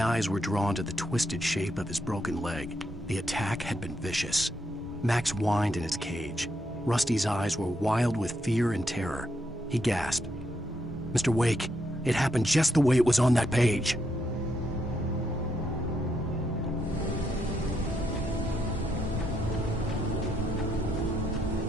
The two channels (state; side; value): normal; both; correlation 0.78